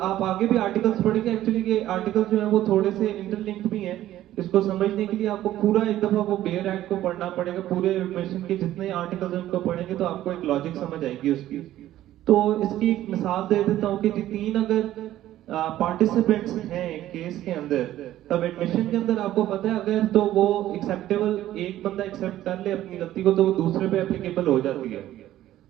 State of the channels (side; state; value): left; quieter; 13.6 dB